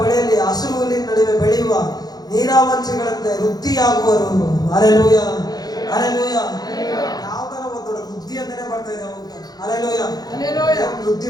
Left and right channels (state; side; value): late; right; 0.19 ms